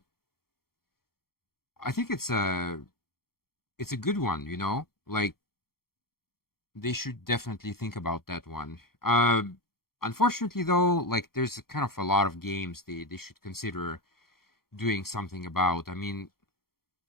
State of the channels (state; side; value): late; right; 0.94 ms